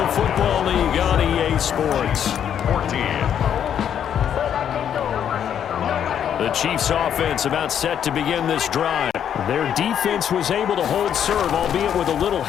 Football League on EA Sports. 14. The Chiefs offense about set to begin this drive. Their defense was able to hold serve, albeit with a little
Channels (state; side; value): quieter; right; 9.1 dB